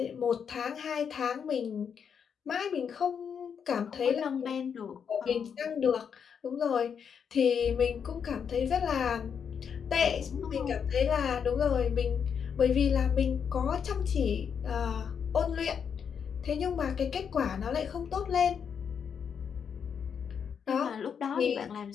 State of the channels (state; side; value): quieter; right; 7.2 dB